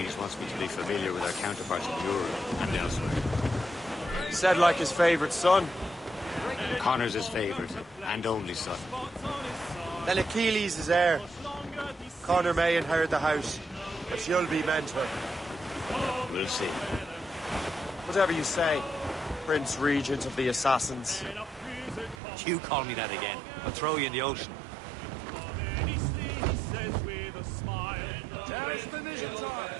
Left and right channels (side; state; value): left; drops out; at 22.2 s